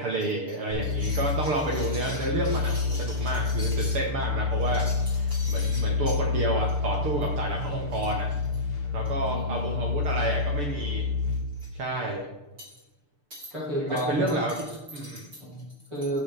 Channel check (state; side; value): late; left; 6.8 ms